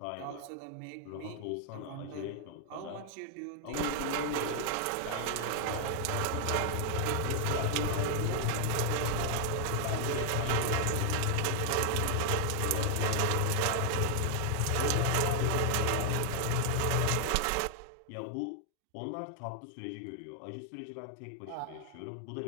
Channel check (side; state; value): both; different; correlation 0.00